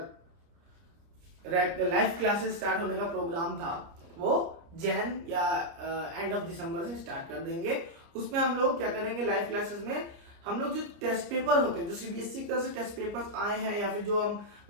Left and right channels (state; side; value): late; left; 30 ms